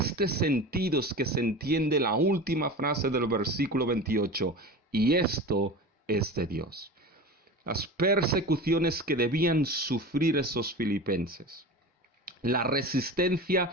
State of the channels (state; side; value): normal; both; correlation 0.31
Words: sentido es que se entiende la última frase del versículo 28, y esto es de Dios. Las persecuciones que debían sufrir esos filipenses, la